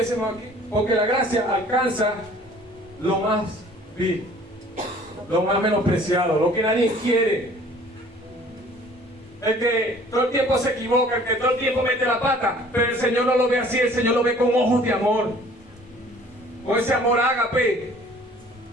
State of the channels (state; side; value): normal; both; correlation 0.52